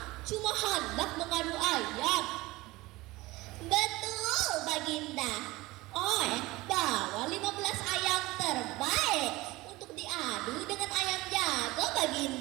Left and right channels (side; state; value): left; quieter; 20.3 dB